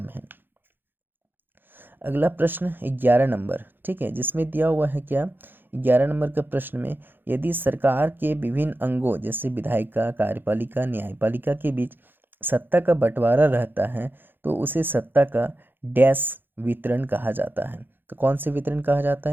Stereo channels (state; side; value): late; left; 0.097 ms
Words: है। अगला प्रश्न 11 नंबर, ठीक है, जिसमें दिया हुआ है क्या, 11 नंबर का प्रश्न में, यदि सरकार के विभिन्न अंगों जैसे विधायिका, कार्यपालिका, न्यायपालिका के बीच सत्ता का बंटवारा रहता है तो उसे सत्ता का डैश वितरण कहा जाता है। तो कौन से वितरण कहा जाता